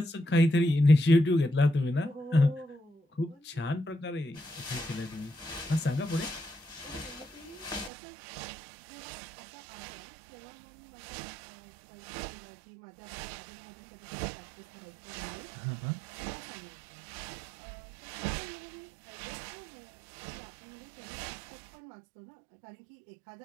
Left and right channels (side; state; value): left; drops out; at 7.9 s